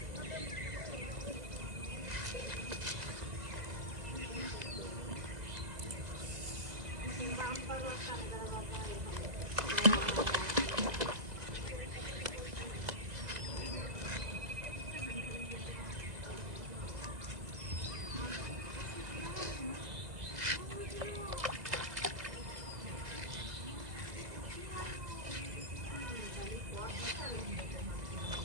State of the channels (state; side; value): late; left; 2.0 ms